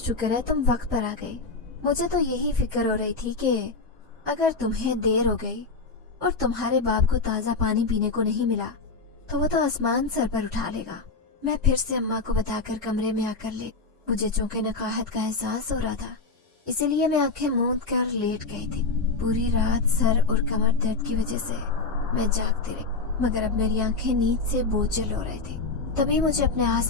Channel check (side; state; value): right; quieter; 4.0 dB